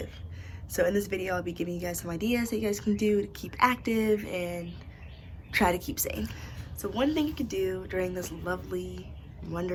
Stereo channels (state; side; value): identical; both; correlation 1.00